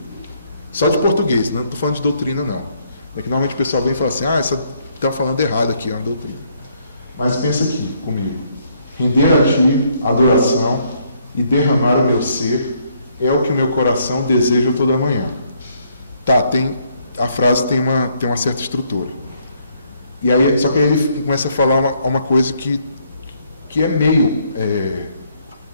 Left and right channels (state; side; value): inverted; both; correlation -0.69